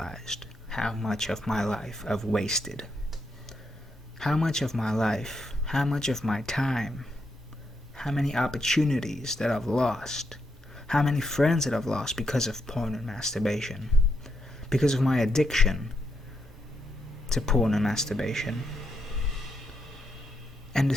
how much of my life I've wasted. How much of my life, how much of my time, how many opportunities that I've lost, how many friends that I've lost because of porn and masturbation, because of my addiction to porn and masturbation. And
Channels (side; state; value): both; normal; correlation 0.81